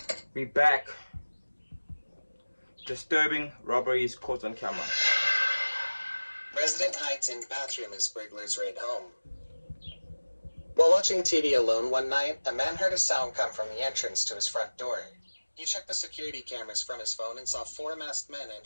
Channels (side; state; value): both; inverted; correlation -1.00